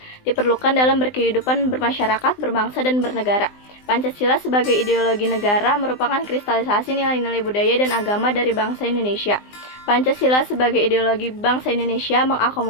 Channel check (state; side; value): late; right; 20 ms